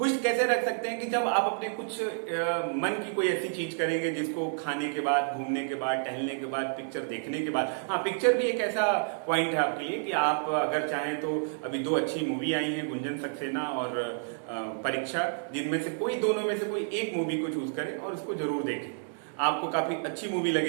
कैसे रख सकते हैं कि जब आप अपने कुछ मन की कोई ऐसी चीज करेंगे जिसको खाने के बाद, घूमने के बाद, टहलने के बाद, पिक्चर देखने के बाद। हाँ, पिक्चर भी एक ऐसा पॉइंट है आपके लिए कि आप अगर चाहें तो अभी 2 अच्छी मूवी आई हैं, गुंजन सक्सेना और परीक्षा, जिनमें से कोई दोनों में से कोई एक मूवी को चूज करें और उसको जरूर देखें। आपको काफी अच्छी मूवी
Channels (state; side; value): silent; left; digital silence